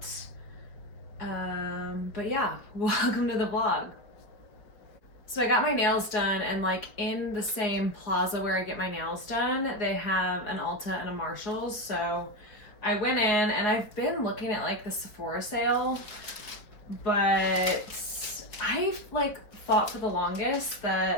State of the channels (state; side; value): late; right; 4.6 ms